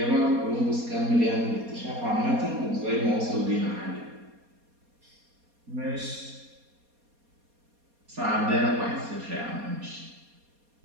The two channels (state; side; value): late; left; 4.2 ms